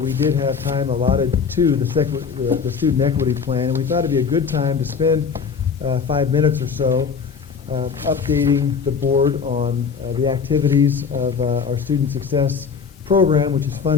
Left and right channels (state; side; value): quieter; right; 5.9 dB